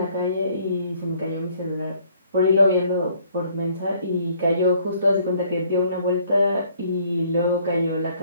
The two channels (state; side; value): inverted; both; correlation -0.62